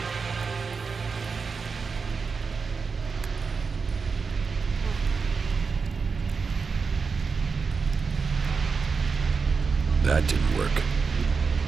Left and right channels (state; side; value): quieter; left; 5.1 dB